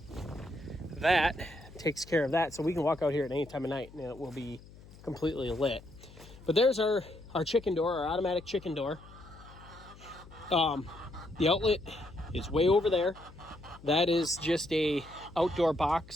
that takes care of that, so we can walk out here at any time of night and it will be completely lit. But there's our chicken door, our automatic chicken door. The outlet is way over there. That is just a outdoor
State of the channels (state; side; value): noise; left; hum, 20 dB below the sound